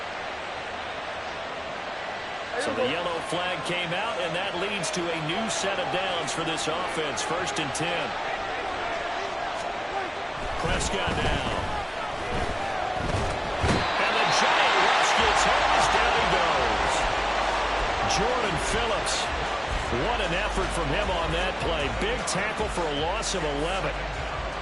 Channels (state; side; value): identical; both; correlation 1.00